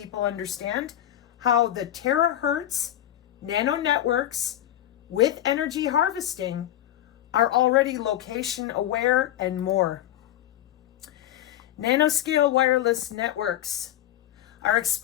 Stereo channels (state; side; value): quieter; right; 12.3 dB